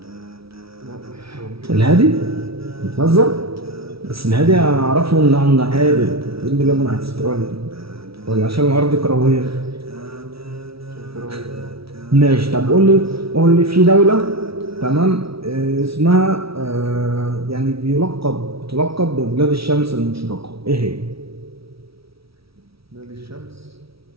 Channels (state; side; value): late; left; 0.76 ms